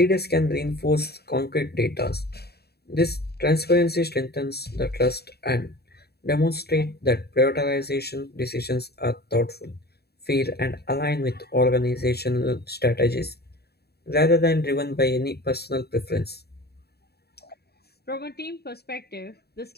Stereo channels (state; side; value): late; right; 0.47 ms